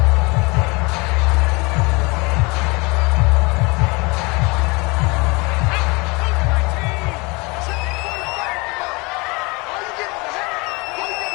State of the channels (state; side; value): quieter; right; 26.9 dB